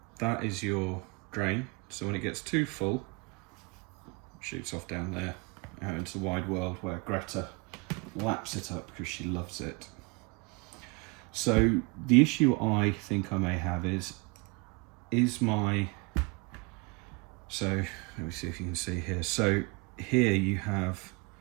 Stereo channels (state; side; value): quieter; left; 28.8 dB